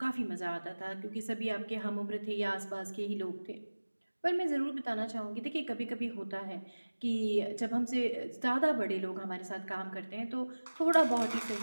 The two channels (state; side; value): inverted; both; correlation -1.00